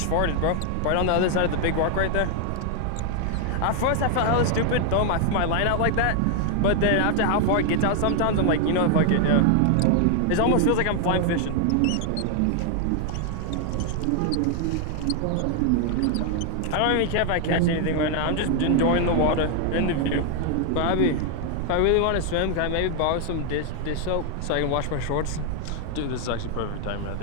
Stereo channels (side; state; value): both; different; correlation 0.00